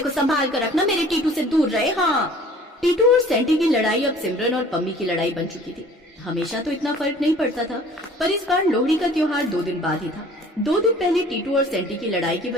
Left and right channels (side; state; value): both; normal; correlation 0.50